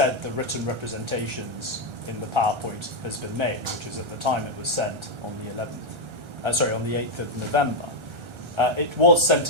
the written representations in the PowerPoint has been made, which is at the time it was sent on the 8th of November. It was sent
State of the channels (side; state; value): left; late; 1.3 ms